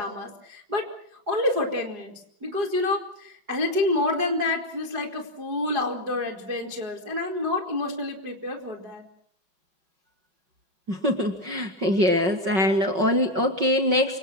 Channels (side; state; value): left; late; 5.3 ms